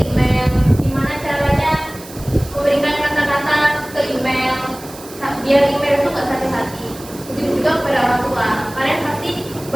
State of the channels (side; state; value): right; noise; hiss, 18 dB below the sound